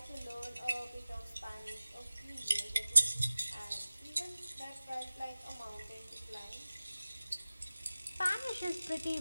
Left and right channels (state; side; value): inverted; both; correlation -0.96